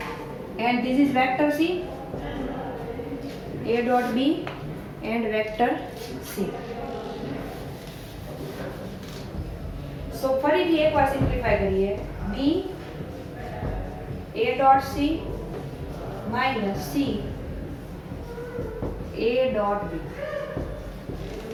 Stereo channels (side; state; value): both; identical; correlation 1.00